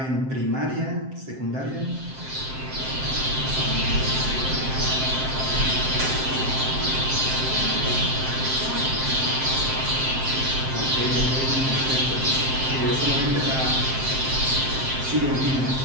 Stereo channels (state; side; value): late; left; 7.6 ms